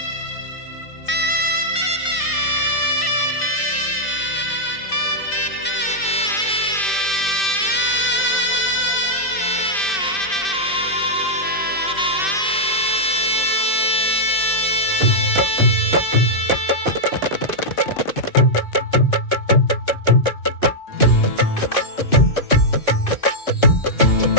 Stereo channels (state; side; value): late; right; 2.6 ms